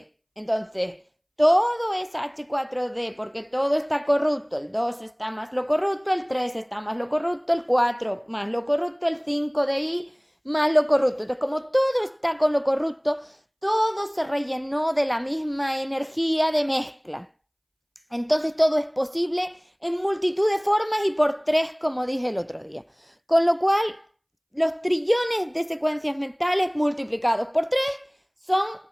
Entonces, todo es H4D porque todo está corrupto. El 2 está más lo corrupto, el 3 está más lo corrupto, el 4 más lo corrupto, el 5 de I más lo corrupto. Entonces, como todo está con lo corrupto, todo se rellenó de la misma energía de mezcla. Entonces todo es posible en multitud de formas y por 3, como dije el otro día. Con lo cual, los trillones de secuencias mentales multiplicados por 3 son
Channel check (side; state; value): both; identical; correlation 1.00